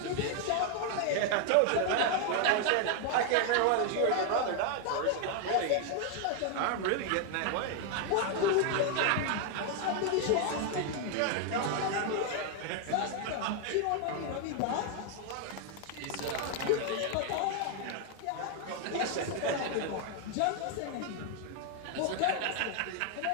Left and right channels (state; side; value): different; both; correlation 0.00